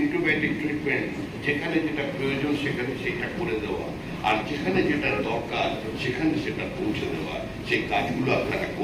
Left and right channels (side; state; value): both; identical; correlation 1.00